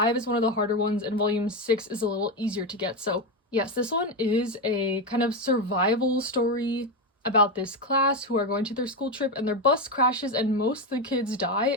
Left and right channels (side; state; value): both; normal; correlation 0.12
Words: is one of the harder ones and volume 6 is a little easier to get. So yes, this one is a kind of survival story about this class who are going to their school trip and their bus crashes and most of the kids die